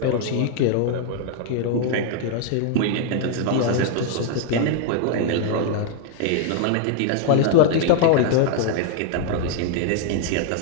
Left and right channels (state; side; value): different; both; correlation 0.00